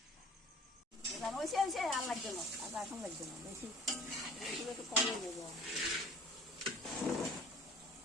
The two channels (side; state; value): both; normal; correlation 0.48